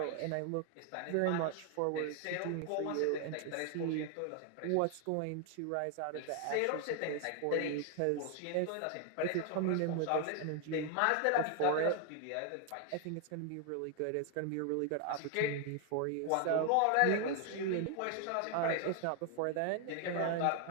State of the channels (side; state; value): both; different; correlation 0.00